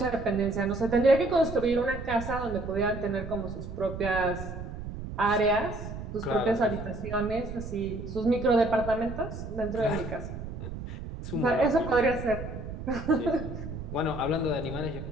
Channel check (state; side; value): noise; right; rumble, 8 dB below the sound